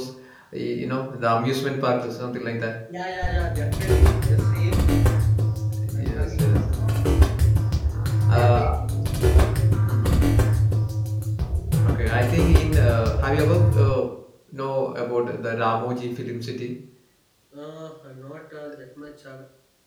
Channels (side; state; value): both; identical; correlation 1.00